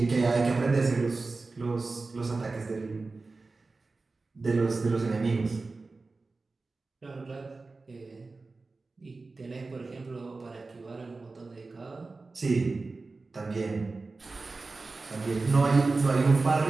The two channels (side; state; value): left; quieter; 3.7 dB